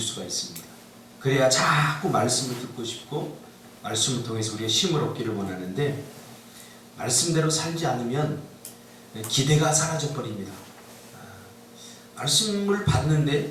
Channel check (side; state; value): both; identical; correlation 1.00